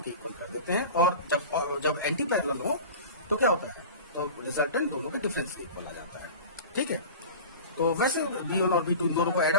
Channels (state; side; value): inverted; both; correlation -0.35